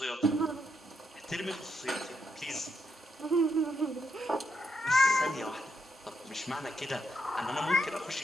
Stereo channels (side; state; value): both; normal; correlation 0.79